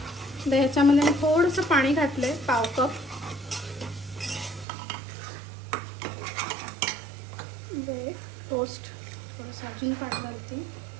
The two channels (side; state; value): left; drops out; at 4.7 s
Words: आता ह्याच्यामध्ये मी थोडंसं पाणी घातलंय, पाव कप. टोस्ट थोडंसं अजून पाणी घालते.